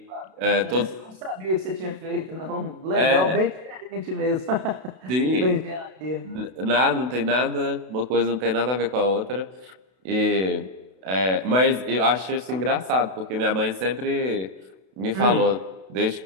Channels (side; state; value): left; late; 32 ms